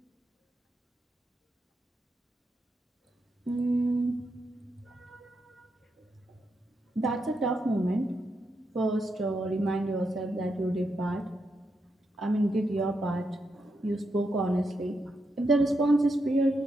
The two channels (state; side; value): normal; both; correlation 0.83